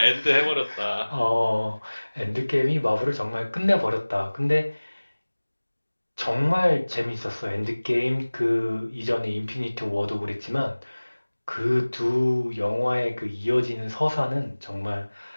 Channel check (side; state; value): both; inverted; correlation -1.00